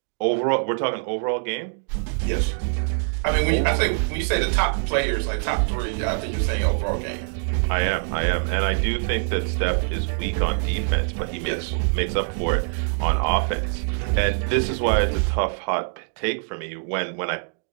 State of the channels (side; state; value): left; silent; digital silence